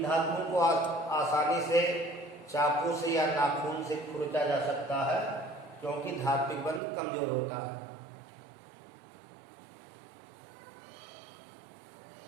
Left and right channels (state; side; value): drops out; left; at 6.8 s